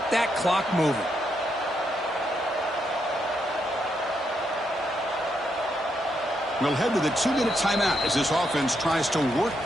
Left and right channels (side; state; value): both; normal; correlation 0.79